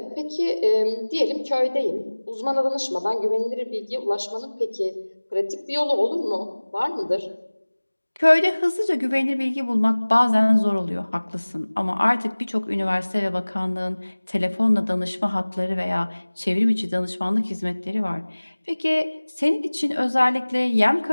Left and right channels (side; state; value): both; inverted; correlation -1.00